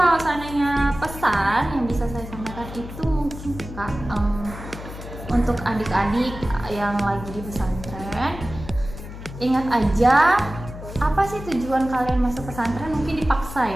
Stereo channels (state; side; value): noise; left; hum, 12 dB below the sound